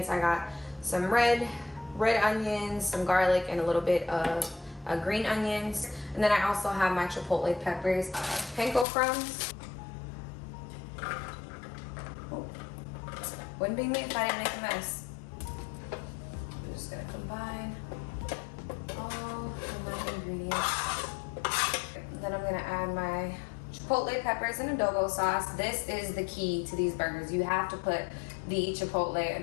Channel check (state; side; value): drops out; right; at 8.8 s